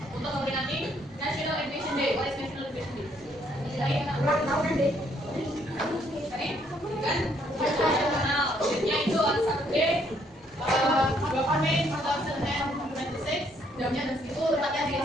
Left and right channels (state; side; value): normal; both; correlation 0.68